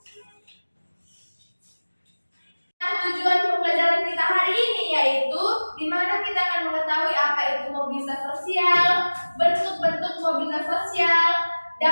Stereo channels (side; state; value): both; inverted; correlation -1.00